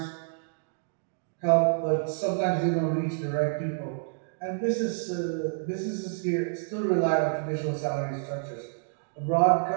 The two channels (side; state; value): left; silent; digital silence